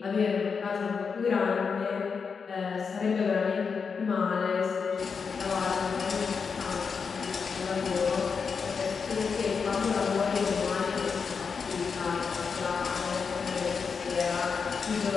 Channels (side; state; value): right; quieter; 5.6 dB